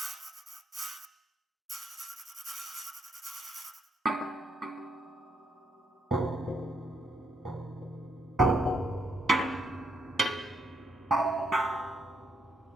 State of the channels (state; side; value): normal; both; correlation 0.76